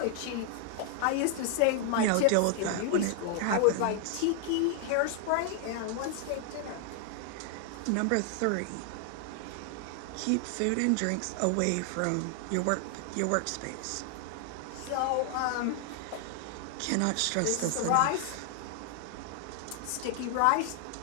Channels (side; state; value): both; different; correlation 0.00